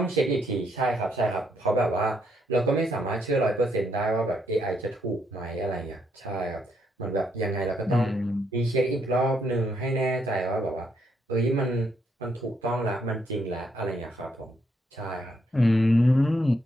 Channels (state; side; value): normal; both; correlation 0.75